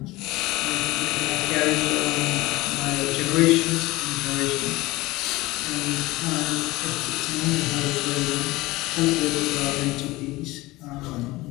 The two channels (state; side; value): quieter; right; 20.1 dB